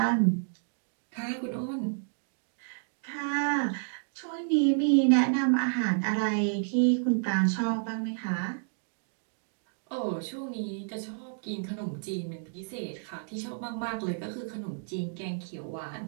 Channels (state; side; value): silent; left; digital silence